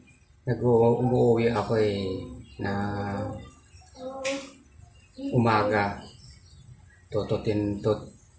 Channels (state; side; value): identical; both; correlation 1.00